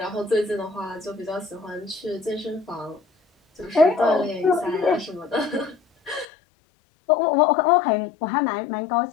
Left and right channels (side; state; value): right; drops out; at 6.2 s